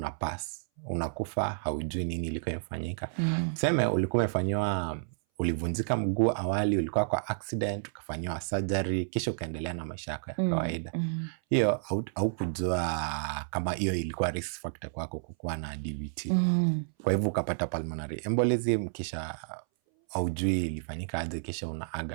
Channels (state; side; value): silent; left; 57 dB below the other